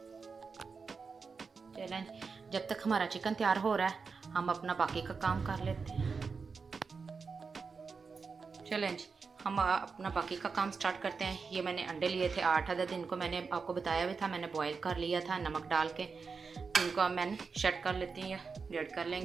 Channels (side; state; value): left; quieter; 5.0 dB